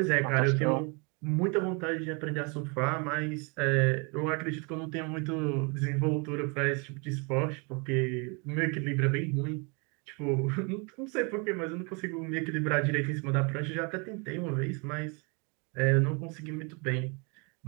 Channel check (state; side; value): quieter; left; 32.7 dB